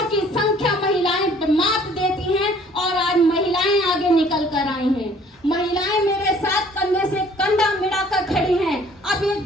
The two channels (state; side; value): normal; both; correlation 0.56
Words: की संख्या महिलाएं मात देती हैं और आज महिलाएं आगे निकल कर आई हैं। महिलाएं मेरे साथ कंधे से कंधा मिलाकर खड़ी हैं। अब